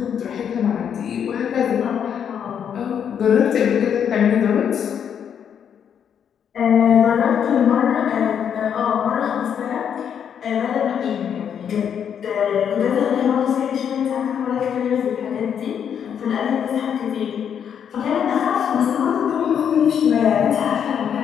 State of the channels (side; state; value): right; quieter; 8.2 dB